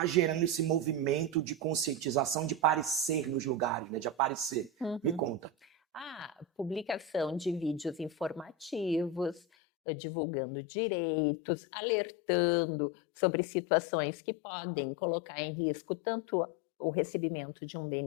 gerando esse movimento de conscientização, de aparecer nos lugares, né? De aparecer? Me conta. Publicação de vídeos informativos, divulgando direitos, alertando sobre situações que podem colocar em risco tanto o recebimento de um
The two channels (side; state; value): right; drops out; at 9.4 s